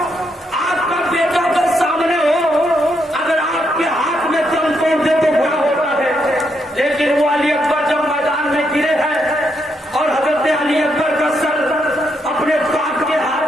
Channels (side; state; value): both; normal; correlation 0.78